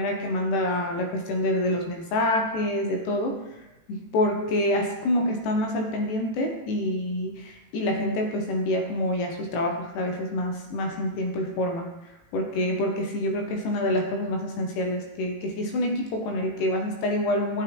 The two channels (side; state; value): right; late; 18 ms